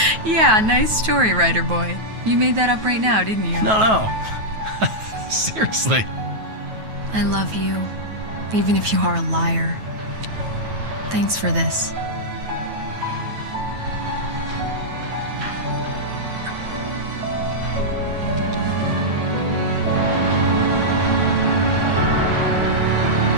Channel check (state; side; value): late; left; 9.3 ms